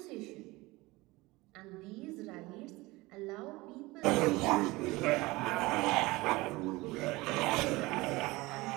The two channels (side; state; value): left; quieter; 21.5 dB